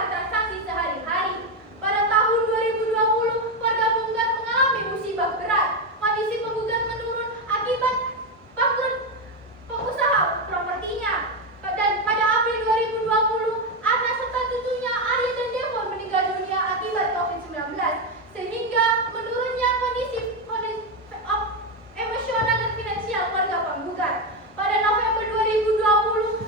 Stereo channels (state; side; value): normal; both; correlation 0.09